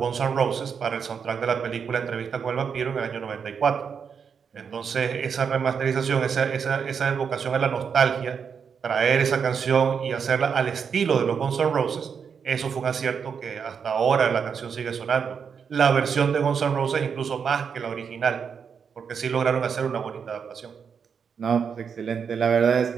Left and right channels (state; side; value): quieter; left; 6.6 dB